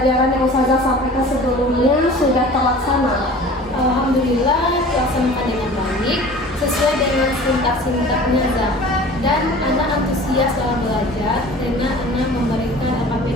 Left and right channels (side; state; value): both; normal; correlation 0.42